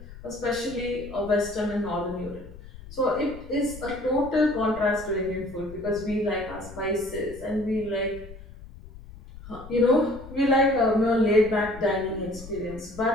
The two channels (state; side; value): noise; left; rumble, 16 dB below the sound